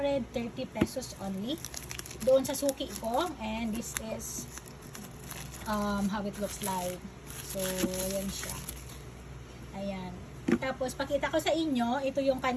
pesos only. Doon sa suki ko, and this is how it looks like. So ayan siya, ayan. Tapos pakita ko sa inyo, ito yung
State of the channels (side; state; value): both; identical; correlation 1.00